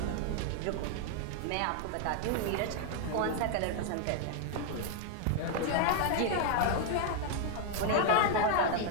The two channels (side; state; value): both; different; correlation 0.00